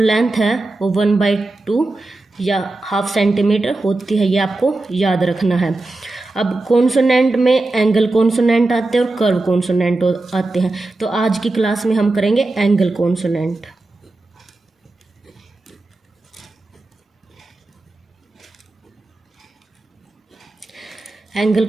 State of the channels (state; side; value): quieter; left; 3.0 dB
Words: है वो 1/2 या ½ सेंटीमीटर होती है, ये आपको याद रखना है। अब कॉन्सोनेंट में एंगल कॉन्सोनेंट आते हैं और कर्व कॉन्सोनेंट आते हैं, तो आज की क्लास में हम करेंगे एंगल कॉन्सोनेंट। एंगल